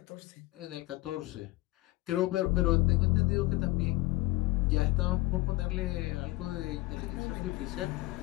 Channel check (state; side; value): quieter; right; 20.1 dB